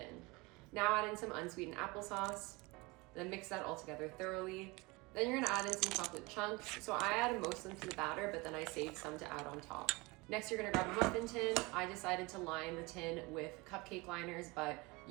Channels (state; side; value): quieter; left; 24.2 dB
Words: Now add in some unsweetened applesauce, then mix that all together thoroughly. Then you're gonna add in some chocolate chunks. So I added most of them to the batter, but then I saved some to add on top. Next, you're gonna grab a muffin tin. I decided to line the tin with cupcake liners, but